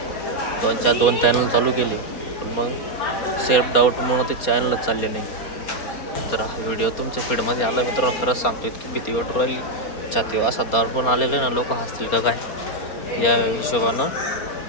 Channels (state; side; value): late; right; 4.3 ms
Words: 2 चॅनल चालू केले, पण मग सेल्फ डाऊटमुळं ते चॅनलच चालले नाही. तर हा व्हिडिओ तुमच्या फीडमध्ये आला मित्रांनो, खरंच सांगतो इतकी भीती वाटू राहिली छातीवर, असा दडपण आलेलं आहे ना, लोक हसतील का काय या हिशोबानं